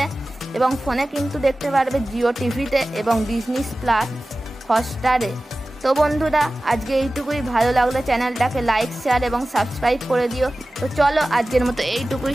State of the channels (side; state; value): both; normal; correlation 0.96